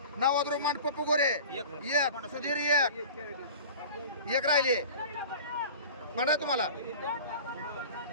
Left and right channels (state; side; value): inverted; both; correlation -0.39